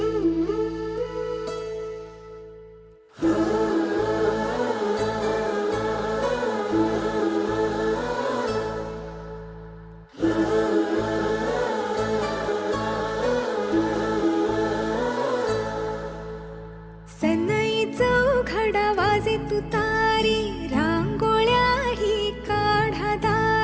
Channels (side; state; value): both; identical; correlation 1.00